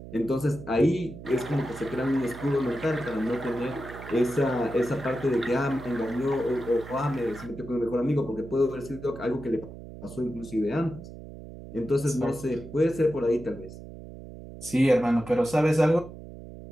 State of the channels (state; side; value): noise; right; hum, 14 dB below the sound